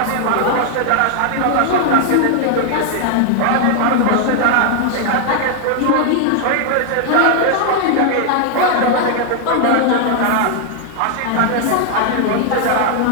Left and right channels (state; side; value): different; both; correlation 0.00